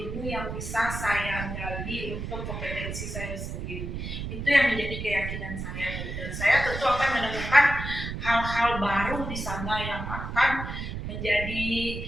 yang bisa saya gali untuk kompetensi saya sendiri. Itu yang menjadi keyakinan saya, Bu. Dan saya tentu akan menemukan hal-hal baru di sana yang akan menjadi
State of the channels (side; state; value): right; noise; rumble, 6 dB below the sound